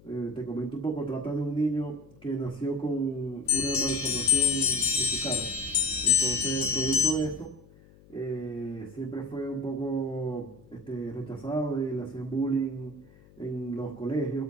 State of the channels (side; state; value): left; noise; hum, 25 dB below the sound